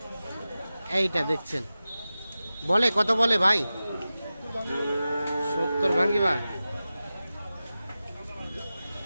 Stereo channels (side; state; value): both; inverted; correlation -0.95